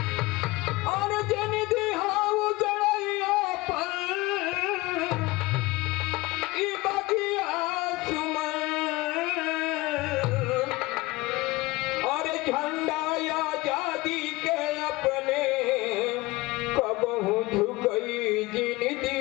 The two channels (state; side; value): quieter; right; 21.4 dB